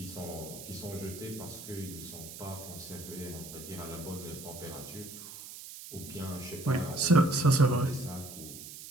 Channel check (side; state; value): right; noise; hiss, 12 dB below the sound